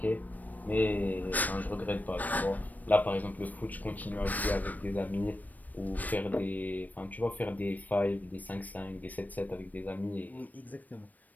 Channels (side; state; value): right; late; 0.081 ms